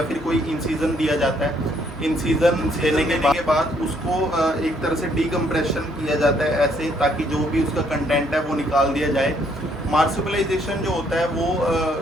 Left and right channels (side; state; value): both; normal; correlation 0.68